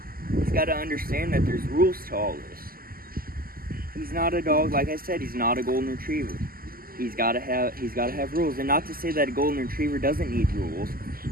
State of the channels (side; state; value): left; late; 0.42 ms